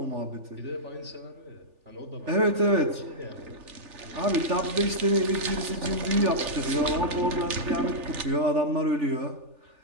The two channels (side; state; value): left; late; 3.4 ms